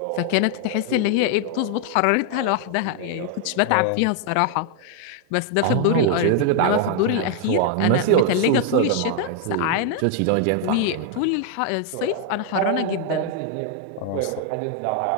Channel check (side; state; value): both; different; correlation 0.00